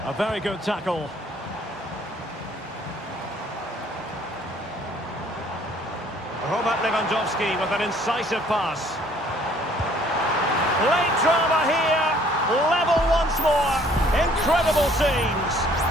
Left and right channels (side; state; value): both; normal; correlation 0.58